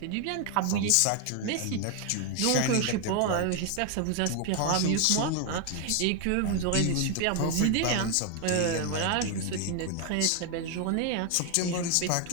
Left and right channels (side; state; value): both; different; correlation 0.01